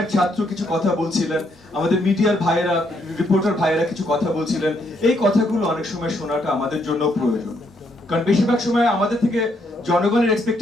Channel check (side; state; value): both; normal; correlation 0.74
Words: ছাত্র কিছু কথা বলছিলেন, আমাদের মিডিয়ার ভাইয়েরা, রিপোর্টার ভাইয়েরা কিছু কথা বলছিলেন, এই কথাগুলো অনেক সময় শোনাটা আমাদের জন্য প্রয়োজন। কারণ বেশিরভাগ সময় আমাদের থেকে জনগণের